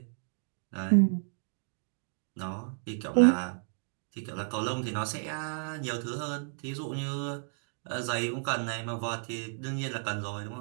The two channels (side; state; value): left; silent; digital silence